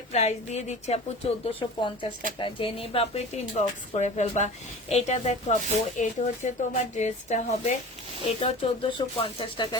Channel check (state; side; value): normal; both; correlation 0.37